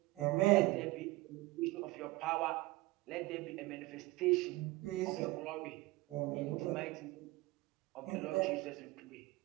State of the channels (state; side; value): quieter; left; 20.6 dB